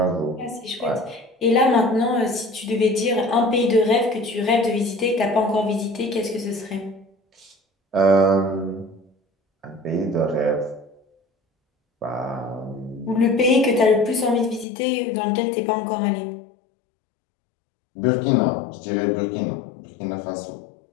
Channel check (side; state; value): right; drops out; at 14.7 s